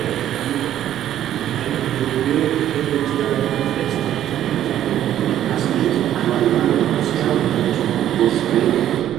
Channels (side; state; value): left; quieter; 11.6 dB